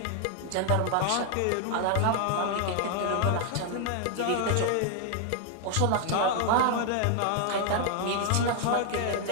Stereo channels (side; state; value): both; different; correlation 0.00